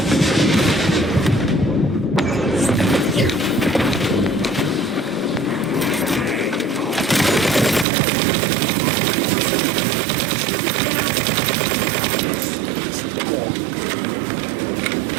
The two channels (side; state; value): left; drops out; at 7.9 s